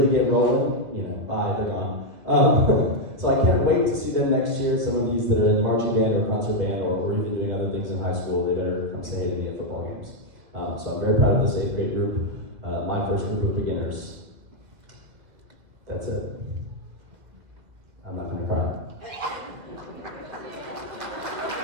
get rolling, bye, they're gone. So I can't wait to see them next year. Some of these that are in the marching band or concert band or even doing other things in high school, they better come say hey to me at football games. So I'm very proud of this 8th grade group, my first group of beginners. That's it. I'm not gonna cry.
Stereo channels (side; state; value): left; late; 2.0 ms